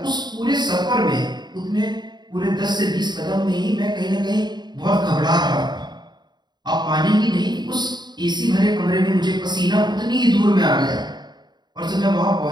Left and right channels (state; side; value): late; left; 0.21 ms